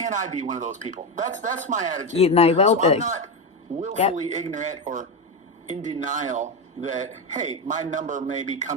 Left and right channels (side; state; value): both; normal; correlation 0.13